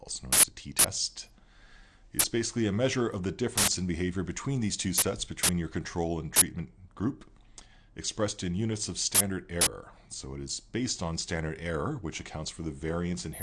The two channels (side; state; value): both; identical; correlation 1.00